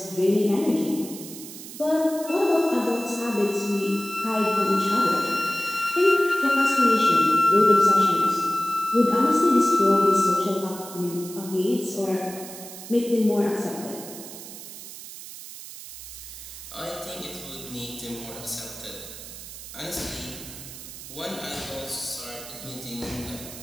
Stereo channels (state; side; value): noise; right; hiss, 13 dB below the sound